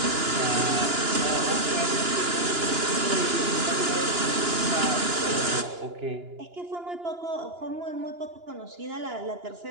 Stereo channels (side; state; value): left; late; 2.9 ms